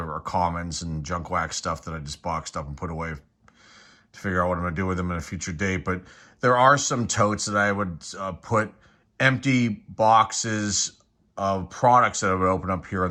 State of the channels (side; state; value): both; identical; correlation 1.00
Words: commons and junk wax stuff that I just boxed up and put away to figure out what I'm going to do with them in a future date. But there are some totes that I would put empty boxes of products that I would open up here